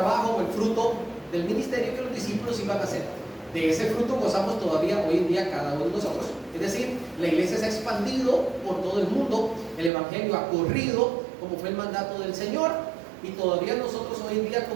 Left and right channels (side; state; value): left; drops out; at 9.9 s